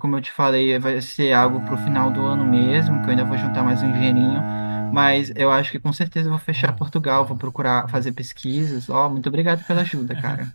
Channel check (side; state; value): both; inverted; correlation -1.00